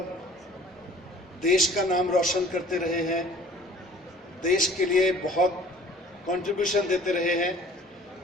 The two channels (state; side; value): normal; both; correlation 0.50